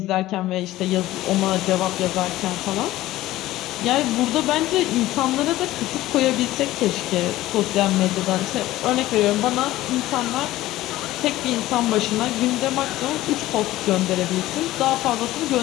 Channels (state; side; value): quieter; right; 16.1 dB